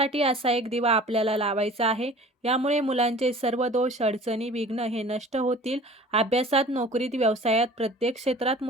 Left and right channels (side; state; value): both; normal; correlation 0.45